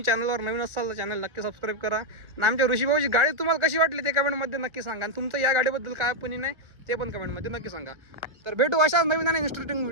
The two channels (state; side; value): late; left; 1.3 ms